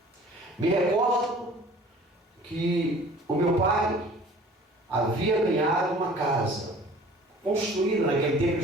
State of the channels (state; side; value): normal; both; correlation 0.48